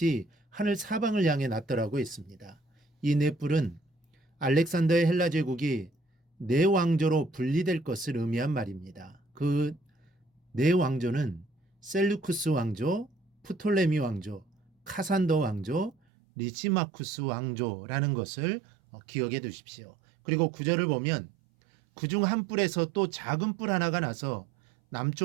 하늘 사방을 향해 났더라고 했습니다. 이 네 뿔은 알렉산더의 헬라 제국이 네 왕조로 분리될 것을 의미한 말입니다. 그 네 왕조는 셀루쿠스 왕조, 프톨레미 왕조, 카산더 왕조, 리시마쿠스 왕조라는 것을 기억해 두십시오. 그리고 구절을 보면 그중 한 뿔에서 또 작은 뿔 하나가 나서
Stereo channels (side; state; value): left; drops out; at 16.0 s